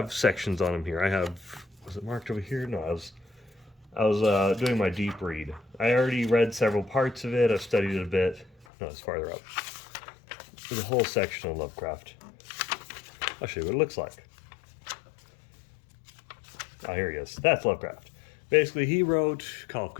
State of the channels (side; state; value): right; drops out; at 8.7 s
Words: sections on them here. I have was it marked over here? No, I was doing my deep read. I already read several parts of it. I've studied it a bit. No, it's farther up. There's a whole section on Lovecraft. I'll show you what it looks like. Oh, here he is. That's Lovecraft. Basically, he wrote Call of